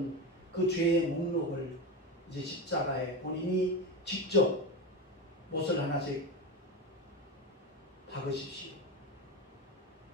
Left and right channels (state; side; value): normal; both; correlation 0.19